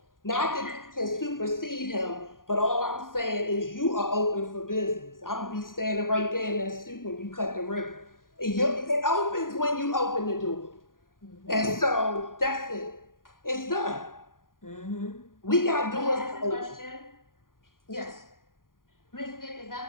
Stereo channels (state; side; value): late; right; 0.90 ms